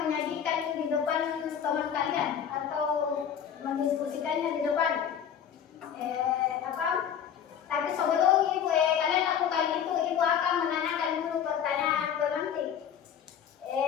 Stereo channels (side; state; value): right; quieter; 8.6 dB